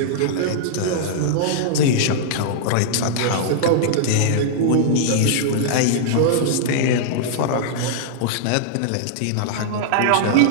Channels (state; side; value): different; both; correlation -0.02